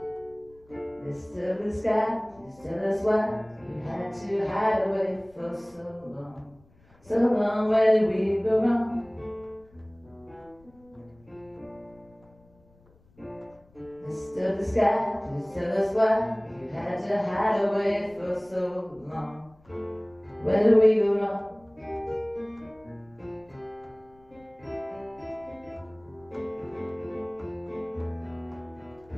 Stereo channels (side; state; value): left; noise; rumble, 29 dB below the sound